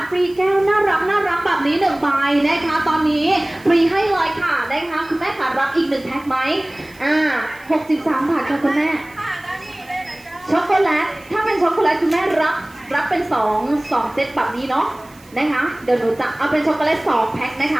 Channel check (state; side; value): noise; right; hiss, 26 dB below the sound